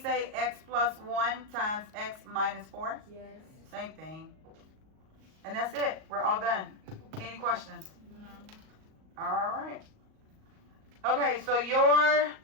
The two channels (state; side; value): late; left; 38 ms